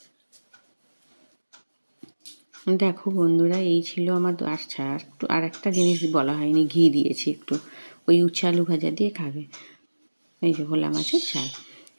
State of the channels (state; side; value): inverted; both; correlation -1.00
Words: দেখো বন্ধুরা, এই ছিল আমার। আচ্ছা, আর একটা জিনিস বলা হয়নি, ঘি দিয়েছি একটু। ওই উচ্ছে আলু ভাজা দিয়ে খাবে, এই যে ভোলা মাছের ঝাল।